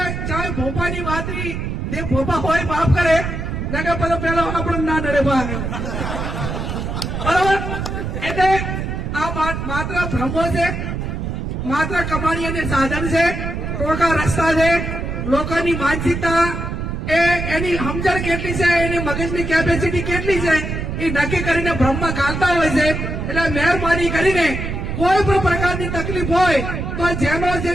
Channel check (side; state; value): right; noise; rumble, 4 dB below the sound